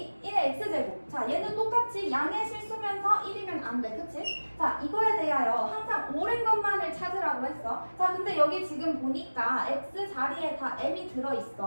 1의 x제곱. 자, 얘는 똑같이 양의 실수면서 1이면 안 돼. 그치? 자, 이거에 대하여 항상 옳은 것만을 찾으라고 했어. 자, 근데 여기 지금 보니까 x 자리에 다 m이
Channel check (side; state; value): both; inverted; correlation -1.00